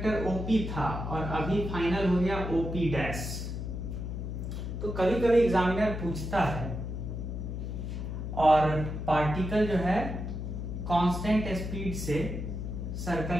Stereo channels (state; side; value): noise; left; hum, 5 dB below the sound